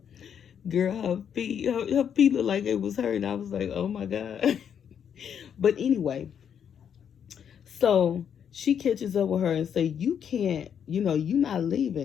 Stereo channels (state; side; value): quieter; right; 8.2 dB